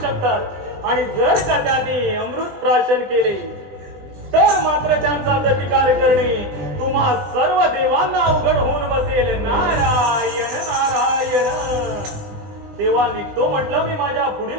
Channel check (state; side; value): late; left; 20 ms